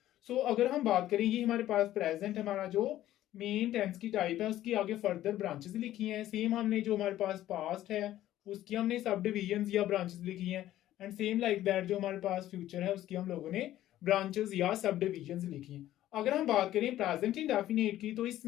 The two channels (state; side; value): quieter; right; 13.6 dB